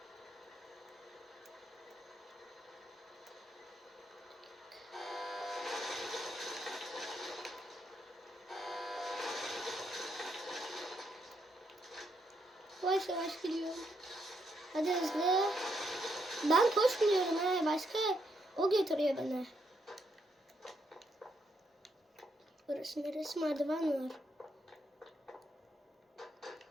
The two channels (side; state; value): both; normal; correlation 0.77